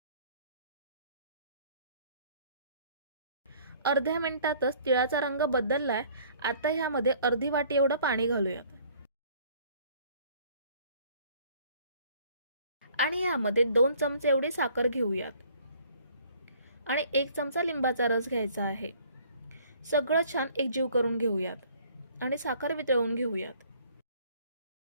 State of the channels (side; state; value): both; inverted; correlation -0.56